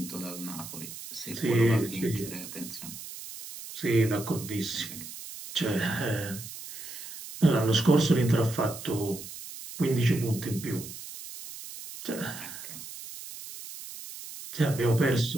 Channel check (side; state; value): right; noise; hiss, 12 dB below the sound